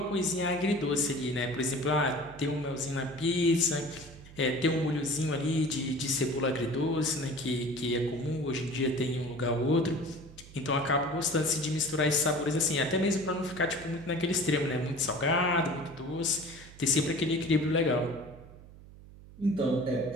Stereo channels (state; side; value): noise; right; hum, 19 dB below the sound